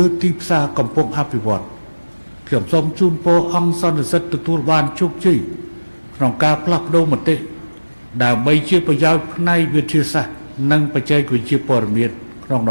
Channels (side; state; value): both; inverted; correlation -1.00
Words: ើទីផ្សារកំពុងអភិវឌ្ឍខ្ញុំសូមជូនពរអង្គសន្និសីទទទួលបានជោគជ័យក្នុងការផ្លាស់ប្ដូរមតិដើម្បីជាប្រយោជន៍ផ្នែកវិទ្យាសាស្ត្រនិងបច្ចេកវិទ្យាព័ត៌មានក្នុងត